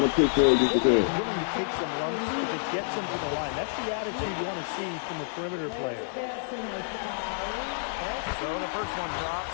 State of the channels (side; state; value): right; silent; digital silence